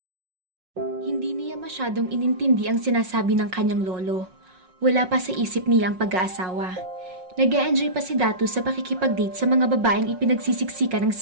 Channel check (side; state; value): left; late; 5.5 ms